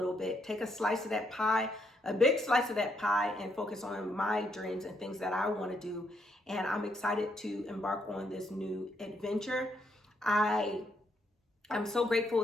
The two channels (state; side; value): normal; both; correlation 0.76